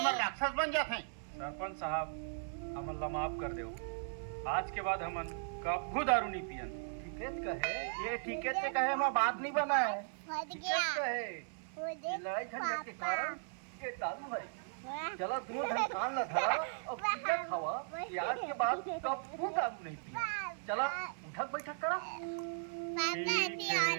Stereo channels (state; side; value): silent; left; digital silence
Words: राक्षस बन जाते हैं। सरपंच साहब हम अल्लाह माफ कर दो, आज के बाद हमन कभी दारू नहीं पियन। ठीकेत कहे ये ठीकेत से कहे हम बात नहीं बना है। ठीकेत कहे ये लड़ाई झगड़े के कारण ये दारू है। चला दोनों धन कान ला धरा और पीका खावा, आज के बाद कभी दारू नहीं पिया। चला उठक बैठक करा।